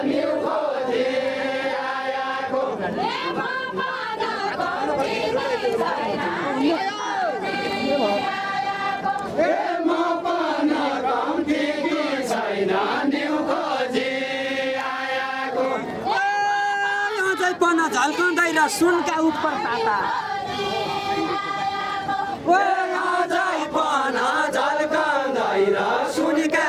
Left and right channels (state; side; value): identical; both; correlation 1.00